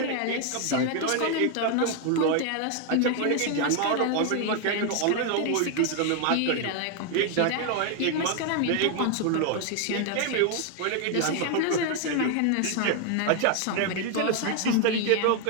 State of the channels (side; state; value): both; different; correlation 0.01